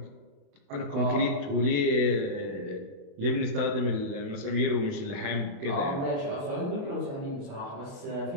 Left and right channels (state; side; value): late; left; 28 ms